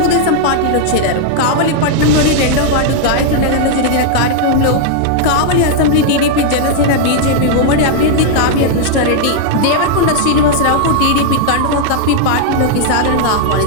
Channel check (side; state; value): both; different; correlation -0.01